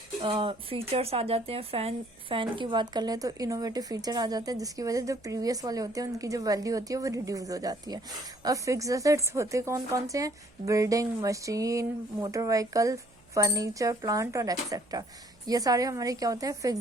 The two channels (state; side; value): noise; right; hum, 29 dB below the sound